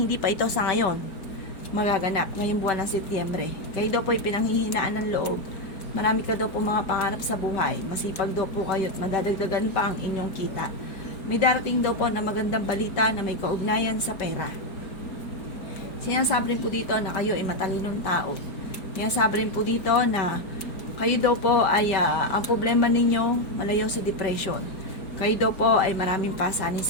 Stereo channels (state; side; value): late; right; 4.8 ms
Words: pa ito sa ngayon magaganap ngayong buwan ng Setyembre. Kayo daw po ay pinanghihinaan ng loob. Marami ka daw po mga pangarap sa buhay. Masipag daw po kayo at madadagdagan pa ang inyong kita. May darating daw po na magandang balita na may kaugnayan sa pera. Sinasabi rin po dito na kayo ay matalinong tao. Sinasabi rin po dito na kayo daw po ay ang problema ninyo malayo sa depression. Kayo daw po ay maraming pasanin